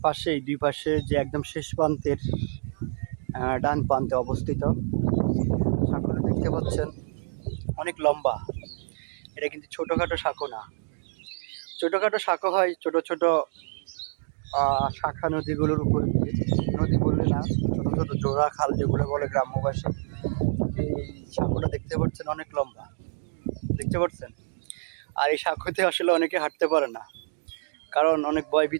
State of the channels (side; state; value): left; silent; digital silence